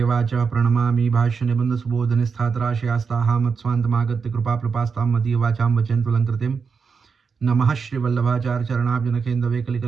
प्रणमामि भाष्य निबंध सुबोध निस्थातराशयास्ताः मत्स्वान्तमागत्य कृपाप्लुपास्तां मदीय वाचां वचन्तु लङ्कृतिं नमः श्री वल्लभाचार्य चरणाब्जनकेन्द्रवे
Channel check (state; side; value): quieter; left; 5.5 dB